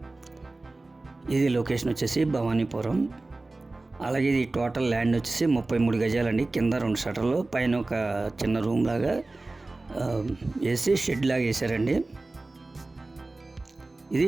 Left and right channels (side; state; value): left; quieter; 3.1 dB